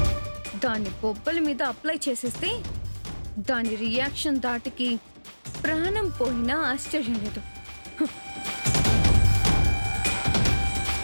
దాని బొబ్బల మీద అప్లై చేసేస్తే దాని రియాక్షన్ దాటికి ప్రాణం పోయినా ఆశ్చర్యం లేదు.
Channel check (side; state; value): both; inverted; correlation -1.00